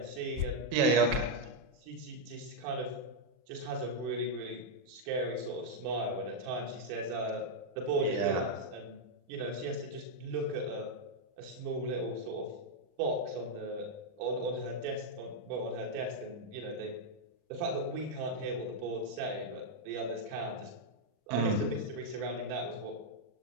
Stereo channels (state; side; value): late; left; 40 ms